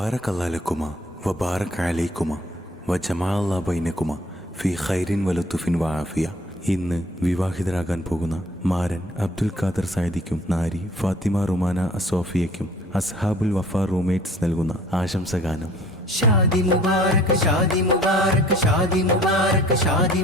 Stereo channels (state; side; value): normal; both; correlation 0.52